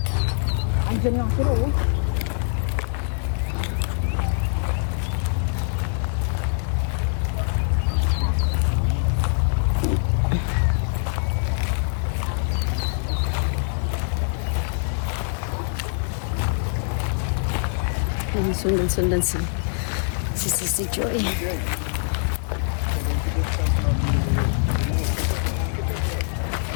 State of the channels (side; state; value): right; silent; digital silence